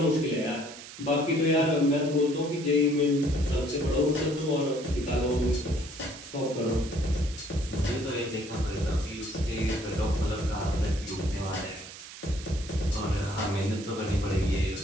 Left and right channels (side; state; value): right; noise; hiss, 14 dB below the sound